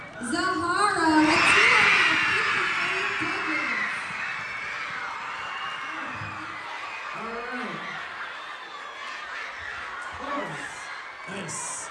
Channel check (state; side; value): identical; both; correlation 1.00